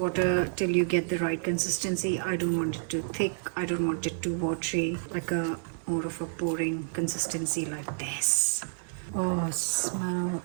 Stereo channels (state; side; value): silent; left; digital silence